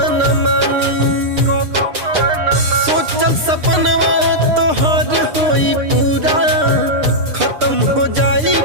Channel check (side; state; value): left; late; 6.6 ms